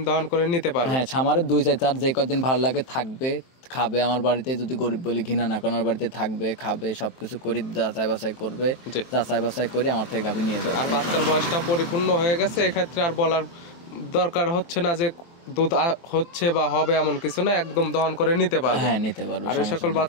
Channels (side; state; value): right; late; 23 ms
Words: দহন করে নিতে পারবে। হ্যাঁ, খামারে 2-4 যে কদিন ভালো লাগে থাকবে, খাবে আমার বাড়িতে, যদি গরিব বলি ঘৃণা না করার বাড়িতে থাকবে, খাবে, সবকিছু করি, যাচাই বাছাই করবে, জি। যাচাই বাছাই করে আমার থেকে গাভী নিয়ে যাবে। আর বাচ্চার বয়সটা পরিপূর্ণ হয়ে গেছে, এক্ষেত্রে আর বলার দরকার হচ্ছে না যে দুধ হচ্ছে বা হবে এমন কিছু না, একদম দহন করে নিতে পারবে। হ্যাঁ নিতে পারবে। আর এই সকল